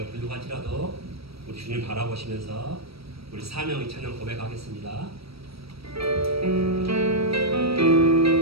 부족할지라도 우리 주님 바라보시면서 우리 사명의 찬양 고백하겠습니다.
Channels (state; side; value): late; left; 0.76 ms